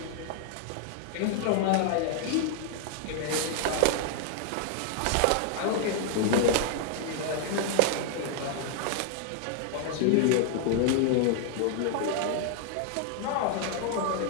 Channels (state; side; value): different; both; correlation 0.00